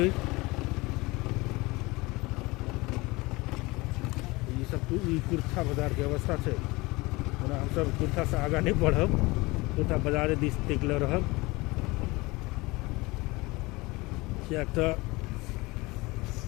सब कुर्था बाजार के अवस्था है। हम सब कुर्था से आगा नहीं बढ़ब, कुर्था बाजार दिस टिकल रहब। क्या तो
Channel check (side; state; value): right; quieter; 22.9 dB